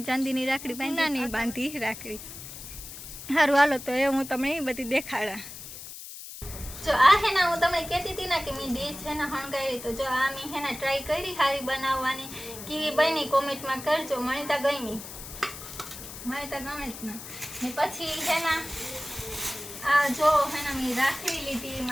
चांदीनी राखड़ी बांधा नहीं बांधी राखड़ी। हारू हालो तो ए हूँ तमने बधी देखाड़ा। जो आ है ना हूँ तमने कहती थी ना कि मैं डिश है ना हणगायरी, तो जो आ मैं है ना ट्राय करी हारी बनाववानी केवी बनी कमेंट में करजो। मने तो गमी, मने तो गमे ज ना। ने पछी है ना आ जो है ना मैं राखड़ी लीधी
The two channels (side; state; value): left; noise; hiss, 12 dB below the sound